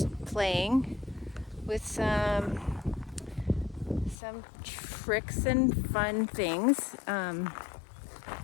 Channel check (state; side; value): drops out; right; at 4.2 s